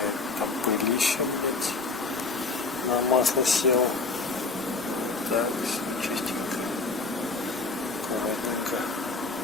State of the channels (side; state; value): right; quieter; 3.9 dB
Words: Масло сел. Так, все чистенько. Аккуратненько.